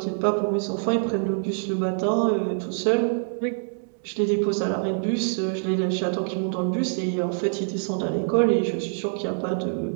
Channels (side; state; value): left; silent; 62 dB below the other